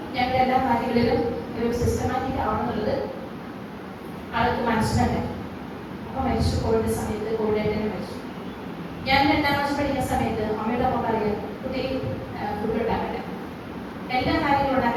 ഞങ്ങൾ എല്ലാ കാര്യങ്ങളിലും ഒരു സിസ്റ്റമാറ്റിക് ആവണമെന്നുള്ളത് ആൾക്ക് മനസ്സിലുണ്ട്. അപ്പൊ മരിച്ചു, കോവിഡ് സമയത്ത് കോവിഡായിട്ട് തന്നെ മരിച്ചു. ഞാൻ 2ാം ക്ലാസ് പഠിക്കുന്ന സമയത്ത് അമ്മയുടെ ഒപ്പം പറയുക, കുട്ടി ഫുഡ് ഉണ്ടാക്കട്ടെ, എല്ലാ കാര്യങ്ങളും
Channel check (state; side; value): identical; both; correlation 1.00